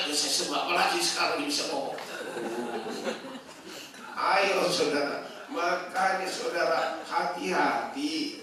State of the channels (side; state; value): both; identical; correlation 1.00